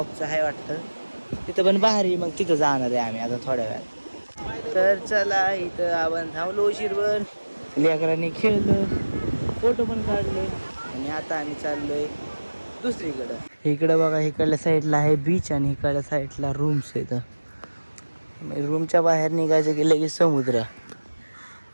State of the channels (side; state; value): both; inverted; correlation -1.00